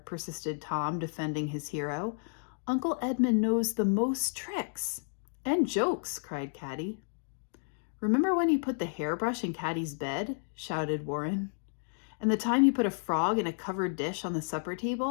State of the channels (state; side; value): silent; right; digital silence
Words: persisted Tom, defending his hero, "Uncle Edmund knows the most tricks." "And jokes," cried Caddie. "Remember when he put the hairbrush in Caddie's bed?" shouted Warren. "And the time he put a frog in a covered dish on the supper